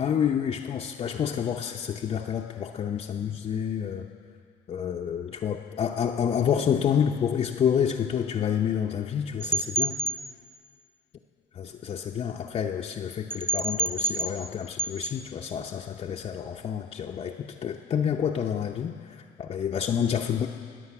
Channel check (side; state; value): right; quieter; 6.3 dB